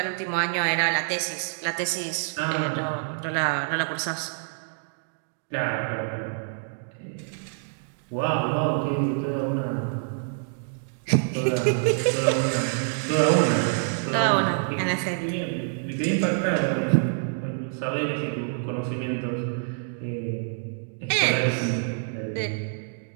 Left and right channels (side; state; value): left; silent; digital silence